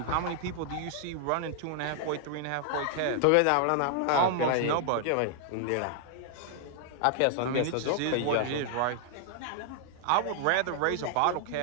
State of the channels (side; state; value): both; different; correlation 0.00